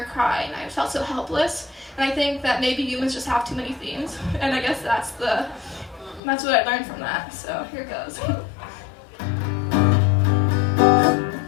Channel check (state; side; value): drops out; right; at 6.2 s